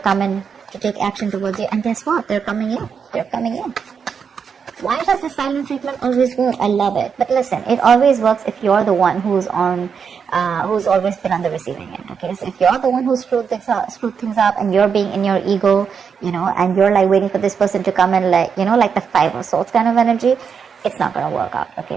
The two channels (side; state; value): left; quieter; 6.5 dB